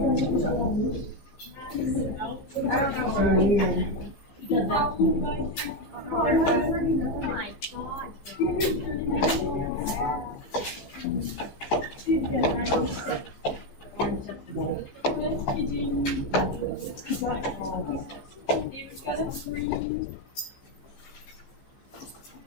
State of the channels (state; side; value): late; right; 15 ms